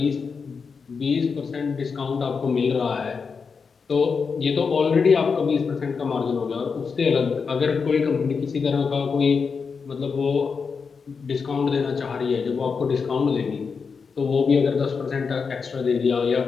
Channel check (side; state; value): right; quieter; 5.4 dB